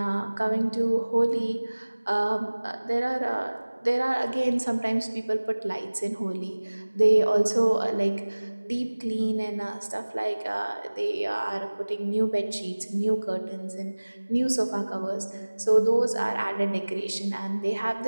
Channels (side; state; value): both; inverted; correlation -1.00